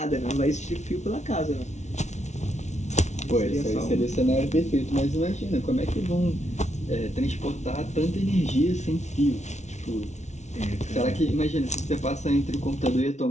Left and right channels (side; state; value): right; late; 0.33 ms